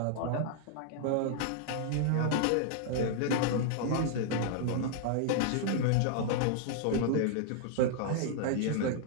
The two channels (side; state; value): both; different; correlation -0.01